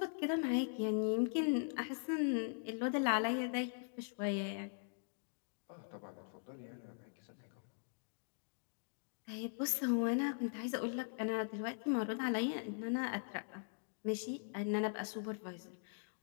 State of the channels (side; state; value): right; silent; digital silence